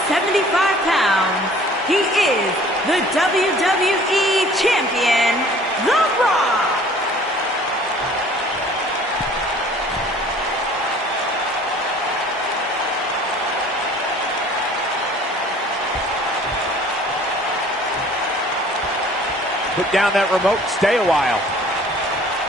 pounds, he is the WWE Champion, The Rock. Put down that remote, stay a while.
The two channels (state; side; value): normal; both; correlation 0.51